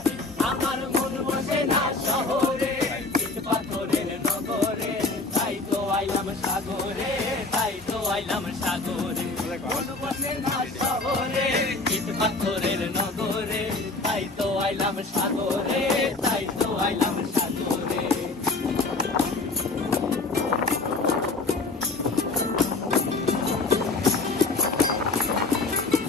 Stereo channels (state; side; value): quieter; right; 3.5 dB